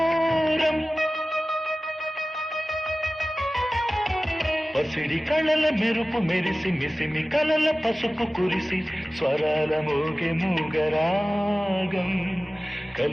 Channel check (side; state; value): both; normal; correlation 0.96